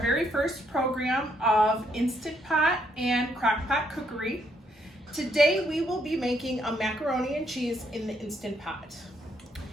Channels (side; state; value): both; normal; correlation 0.73